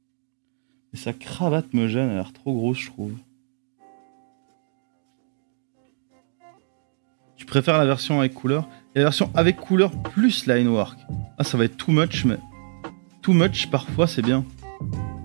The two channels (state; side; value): silent; left; digital silence